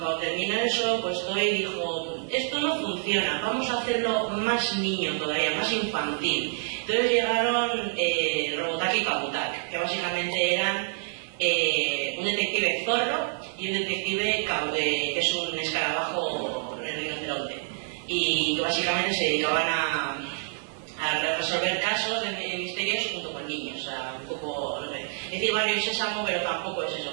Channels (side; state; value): left; silent; 60 dB below the other